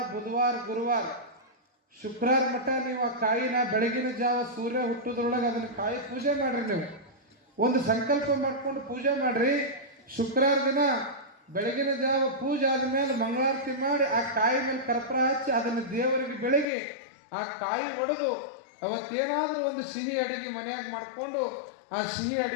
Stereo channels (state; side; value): drops out; right; at 16.7 s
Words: ಬುಧವಾರ, ಗುರುವಾರ, ಶುಕ್ರವಾರ ಮಟ್ಟ ನೀವು ಆ ಕಾಯಿನ ಬೆಳಗಿನ ಜಾವ ಸೂರ್ಯ ಹುಟ್ಟೋದ್ರೊಳಗೆ ಅದನ್ನ ಕಾಯಿ ಪೂಜೆ ಮಾಡ್ರಿ. ನೀವು ಒಂದು ಸಂಕಲ್ಪ ಮಾಡ್ಕೊಂಡು ಪೂಜೆ ಮಾಡ್ರಿ. ಶುಕ್ರವಾರ ದಿನ ಬೆಳಗಿನ ಜಾವ ಪೂಜೆ ಆದ್ಮೇಲೆ ಮಂಗಳಾರತಿ ಮಾಡಿ ಆ ಕಾಯಿ ಮೇಲೆ ಕರ್ಪೂರ ಹಚ್ಚಿ ಅದನ್ನು ದೇವರಿಗೆ ಬೆಳಗಿ ಆ ಕಾಯಿ ಒಡೆದು ಅವತ್ತೇನಾದ್ರೂ ಒಂದು ಸಿಹಿ ಅಡಿಗೆ ಮನೆಯಾಗ ಮಾಡಿಕೊಂಡು ಆ ಸಿಹಿ